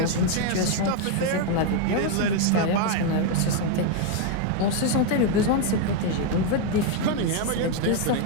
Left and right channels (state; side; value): different; both; correlation 0.01